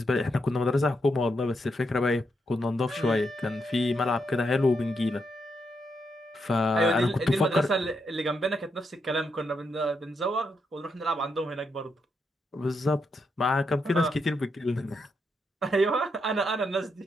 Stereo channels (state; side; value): normal; both; correlation 0.81